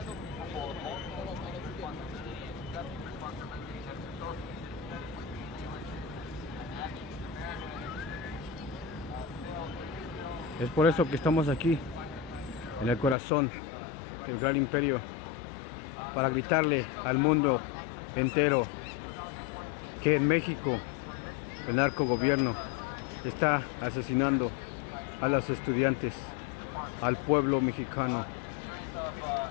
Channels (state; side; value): drops out; right; at 13.2 s